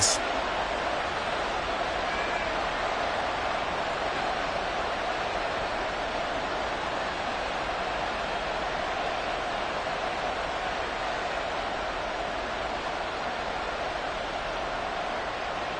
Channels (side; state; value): both; identical; correlation 1.00